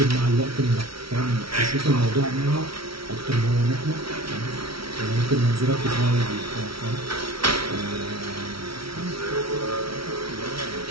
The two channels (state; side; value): late; left; 0.75 ms